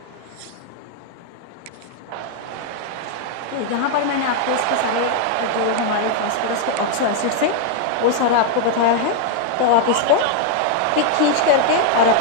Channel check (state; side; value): different; both; correlation 0.00